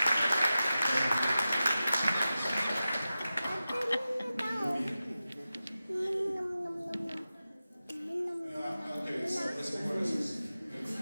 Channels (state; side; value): inverted; both; correlation -0.94